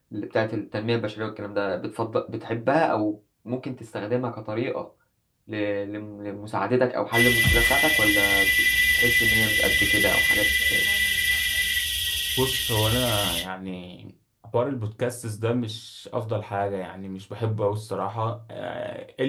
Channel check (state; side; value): identical; both; correlation 1.00